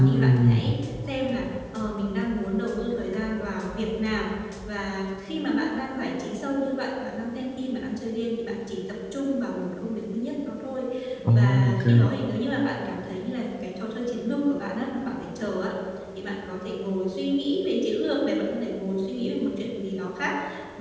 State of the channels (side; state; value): both; identical; correlation 1.00